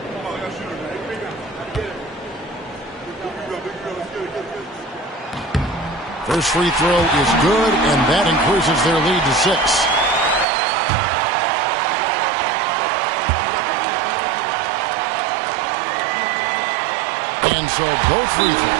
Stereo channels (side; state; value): left; drops out; at 10.5 s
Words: First free throw is good, and that increases their lead to 6. And so both free